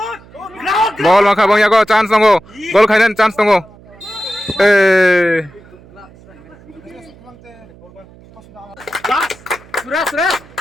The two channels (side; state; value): right; noise; hum, 24 dB below the sound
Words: Ball maka bang yago chance tunggu. Goal kainan chance tunggu. Sudah.